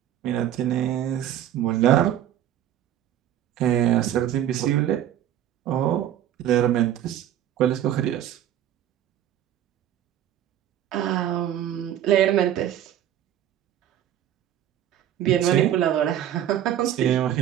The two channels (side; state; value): left; quieter; 11.3 dB